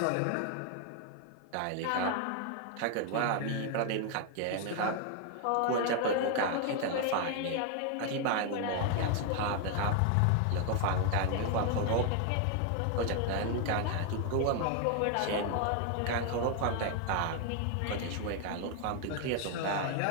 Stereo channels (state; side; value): different; both; correlation 0.01